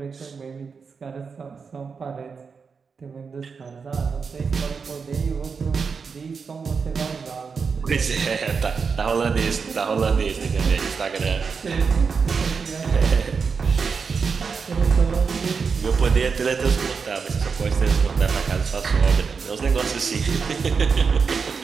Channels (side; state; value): left; quieter; 5.5 dB